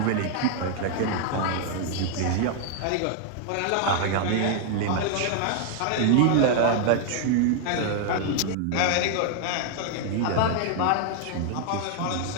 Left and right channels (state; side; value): different; both; correlation 0.00